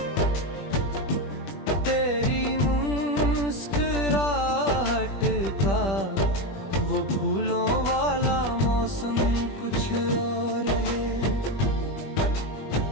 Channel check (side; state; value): right; late; 20 ms